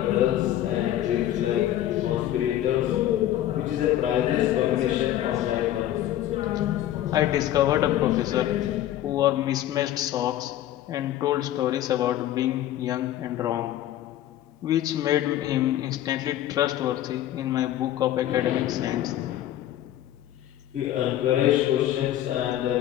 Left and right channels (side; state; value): right; quieter; 12.8 dB